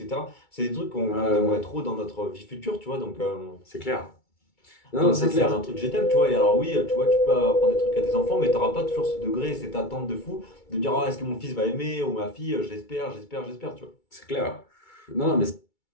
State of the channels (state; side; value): late; right; 2.3 ms